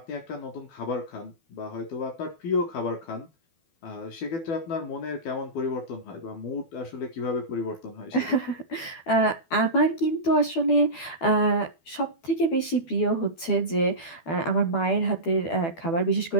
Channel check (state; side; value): late; right; 12 ms